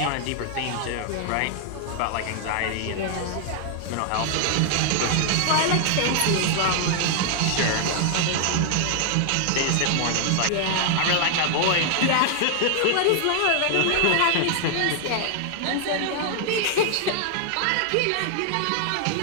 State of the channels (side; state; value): both; different; correlation 0.00